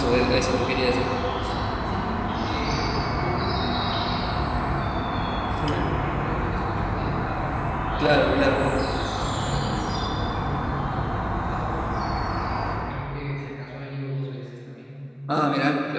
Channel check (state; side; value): identical; both; correlation 1.00